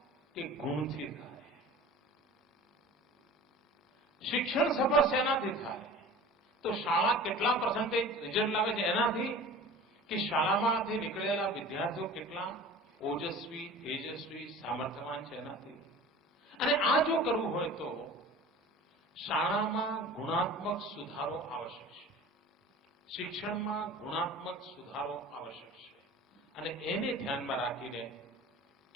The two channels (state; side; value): normal; both; correlation 0.40